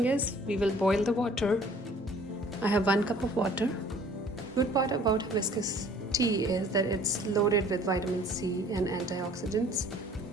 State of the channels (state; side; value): normal; both; correlation 0.53